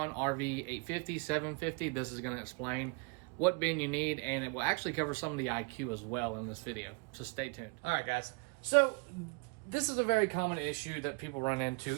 RV 850, 750, this is going to explain what bin you need, and it will actually cover some of the IQ as well in this video. So stay tuned. All right, guys. So this is a very common issue that people run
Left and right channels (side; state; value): left; quieter; 32.4 dB